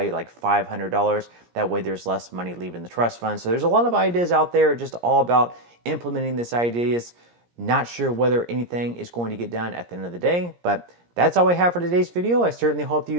like $500. That way there's less money leaving the trust fund. So there's a lot of ideas out there, just all about implementing these ideas. Not sure whether anything is going to get done at the end of the day, but that's all I have for today's video. I certainly hope that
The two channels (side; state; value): left; late; 17 ms